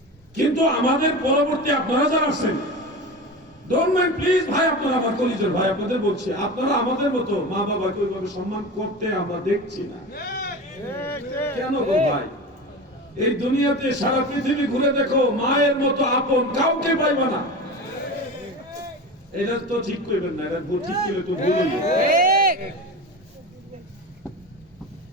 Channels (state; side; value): normal; both; correlation 0.28